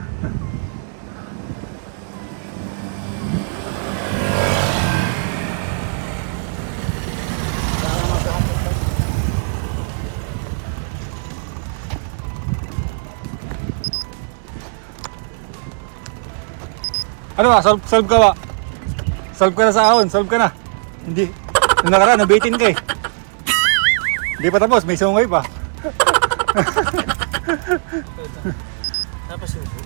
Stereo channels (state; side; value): silent; left; 66 dB below the other